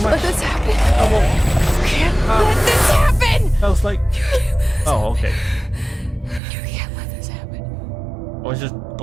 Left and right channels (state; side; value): drops out; left; at 6.4 s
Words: let this happen. Trouble. You can't let this happen. Sounds like. Oh, okay. You can't let this happen. I was just